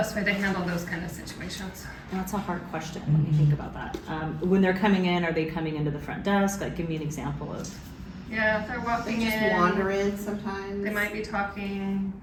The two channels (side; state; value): both; identical; correlation 1.00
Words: way to handle those kind of situations? That's a hard question. Let me think about that. When they're coming in, are they coming into the front desk? Like, give me an example of. Yeah, if they're walking They just in, wander in sometimes. they might be talking,